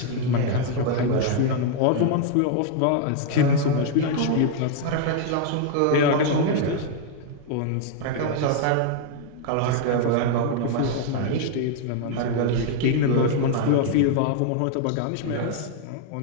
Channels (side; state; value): both; different; correlation 0.00